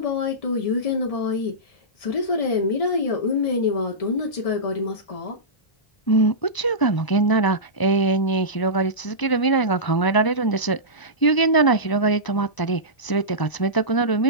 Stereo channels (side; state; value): right; late; 1.0 ms